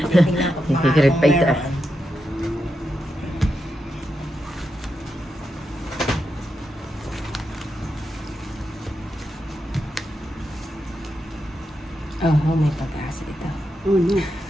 ko pa Hihirit kung pa ito. meron. Oh, may pag-asa ito. Oh, no.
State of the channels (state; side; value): normal; both; correlation 0.86